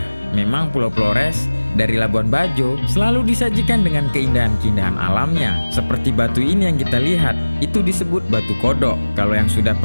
Memang Pulau Flores dari Labuan Bajo selalu disajikan dengan keindahan-keindahan alamnya. Seperti batu ini yang kita lihat, itu disebut batu kodok. Kalau yang sudah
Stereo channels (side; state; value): both; inverted; correlation -1.00